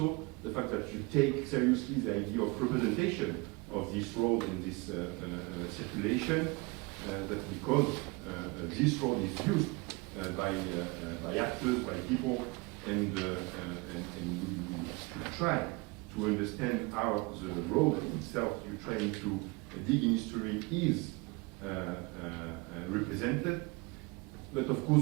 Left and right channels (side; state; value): left; quieter; 26.7 dB